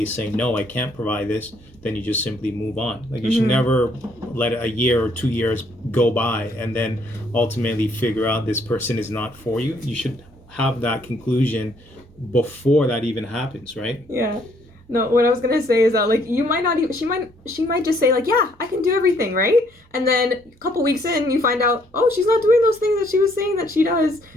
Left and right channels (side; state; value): both; normal; correlation 0.67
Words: is saying, no, I can't provide this, then you just simply move on. Like, you should never let a year or 2 years go by and then ultimately figure out this person is not for you. You should have that conclusion before that even happens, right? Yeah. No, what I was gonna say is that, like, you might not even, she might just say, like, yeah, I can do everything, right? And then a couple weeks in, you find out, oh, she's not doing those things that she was saying that she does.